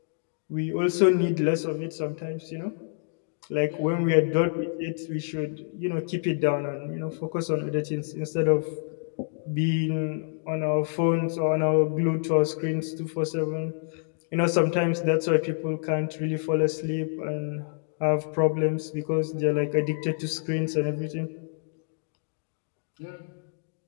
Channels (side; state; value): right; silent; digital silence